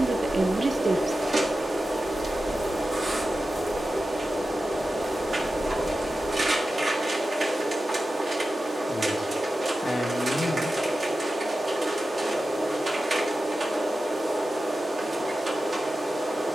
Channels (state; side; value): normal; both; correlation 0.93